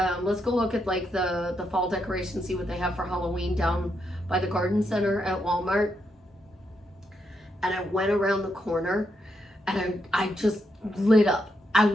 let's go look at like the fall decorations, see what they have for Halloween down by the garden center at Walmart. And I went around the corner and I just lit up. I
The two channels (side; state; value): both; normal; correlation 0.81